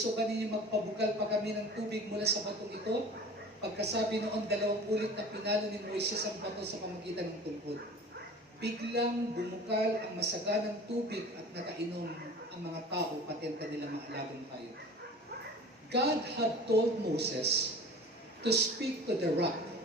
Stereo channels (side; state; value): both; normal; correlation 0.40